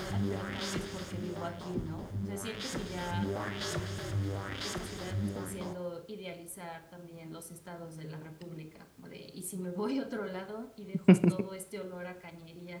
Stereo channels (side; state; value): both; identical; correlation 1.00